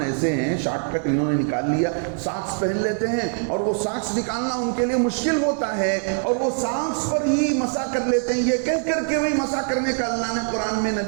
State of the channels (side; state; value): left; silent; 62 dB below the other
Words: ایسے ہیں، شارٹ کٹ انہوں نے نکال لیا، ساکس پہن لیتے ہیں اور وہ ساکس نکالنا ان کے لیے مشکل ہوتا ہے اور وہ ساکس پر ہی مسح کر لیتے ہیں، یہ کہہ کر کے وہی مسح کرنے کا اللہ نے قرآن میں،